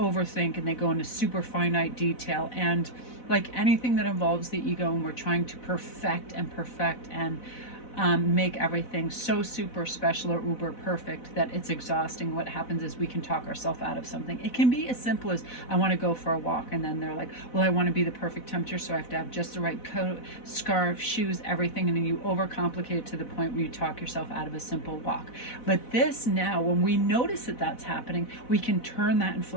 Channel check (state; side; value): late; right; 4.0 ms